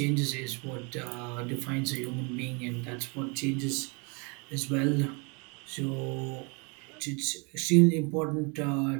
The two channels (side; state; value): left; quieter; 32.2 dB